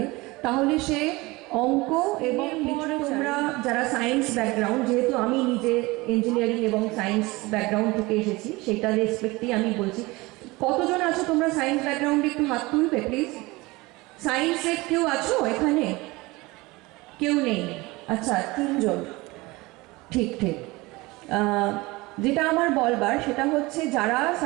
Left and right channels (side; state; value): left; quieter; 22.2 dB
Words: তাহলে সে অঙ্ক এবং তোমরা যারা সায়েন্স ব্যাকগ্রাউন্ড, যেহেতু আমি নিজে ইঞ্জিনিয়ারিং এবং সায়েন্স ব্যাকগ্রাউন্ড থেকে এসেছি, সেটা রেসপেক্টেই আমি বলছি। কতজন আছো তোমরা সায়েন্স ব্যাকগ্রাউন্ডে, একটু হাত তুলবে প্লিজ। সায়েন্সের কেউ আছো এখানে? কেউ নেই? আচ্ছা, 3 জন। ঠিক। যেটা আমার বলবার সেটা হচ্ছে, যারা